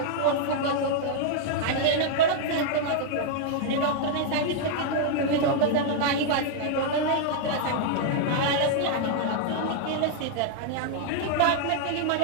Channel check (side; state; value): both; different; correlation -0.01